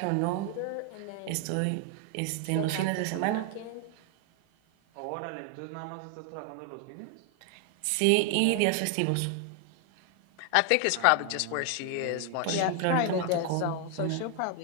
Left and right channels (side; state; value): both; different; correlation 0.00